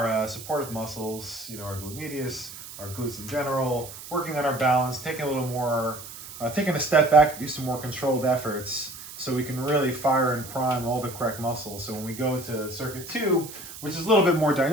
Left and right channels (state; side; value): noise; right; hiss, 13 dB below the sound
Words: supportive muscles, our glute medius, our glutes in general, working on our balance, taking a step back to do some more controlled efforts so we can really fire and prime all the correct muscles. So when we go to circuit 2, which is a little bit more